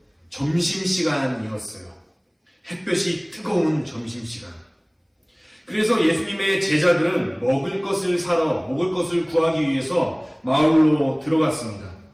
점심시간이었어요. 햇볕이 뜨거운 점심시간. 그래서 예수님의 제자들은 먹을 것을 구하기 위해서 마을로 들어갔습니다.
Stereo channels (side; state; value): both; identical; correlation 1.00